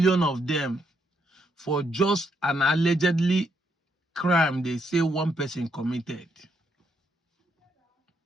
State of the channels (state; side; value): normal; both; correlation 0.76